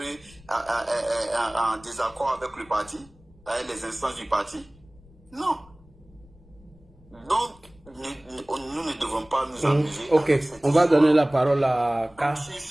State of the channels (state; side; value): noise; left; rumble, 26 dB below the sound